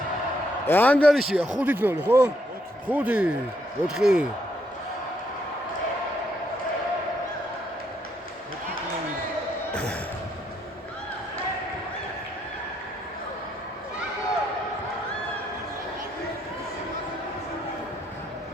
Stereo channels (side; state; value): both; normal; correlation 0.74